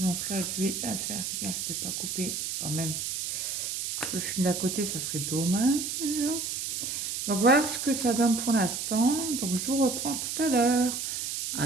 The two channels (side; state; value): right; noise; hiss, 3 dB below the sound